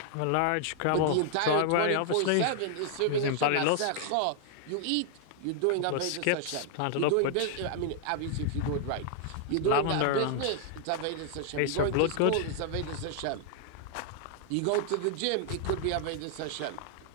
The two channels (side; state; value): both; different; correlation 0.00